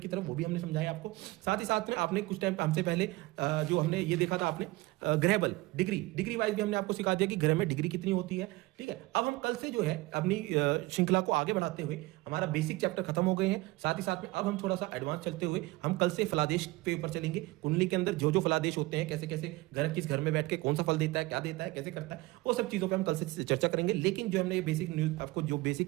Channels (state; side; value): quieter; left; 20.9 dB